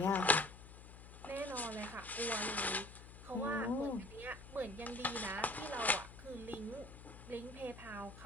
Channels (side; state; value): left; noise; hum, 15 dB below the sound